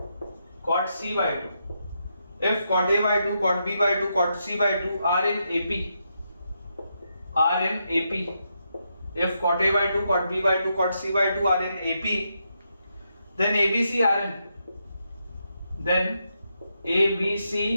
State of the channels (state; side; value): inverted; both; correlation -0.82